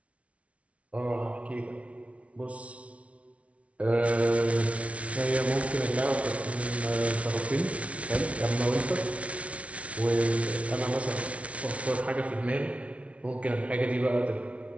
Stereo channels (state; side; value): late; left; 0.063 ms